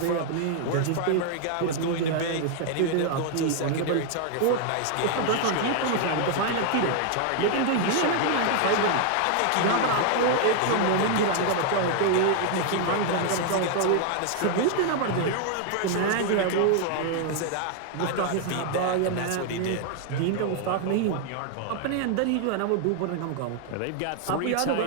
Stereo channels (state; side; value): different; both; correlation 0.00